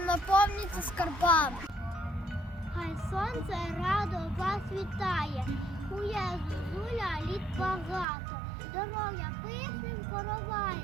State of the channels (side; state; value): left; drops out; at 8.1 s